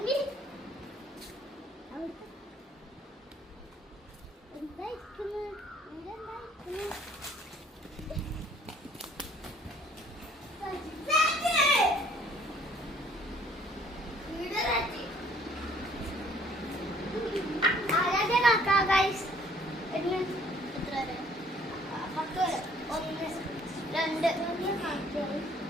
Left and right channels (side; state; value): both; normal; correlation 0.58